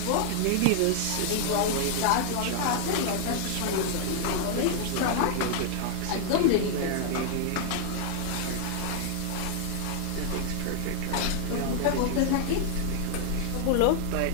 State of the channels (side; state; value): both; different; correlation 0.00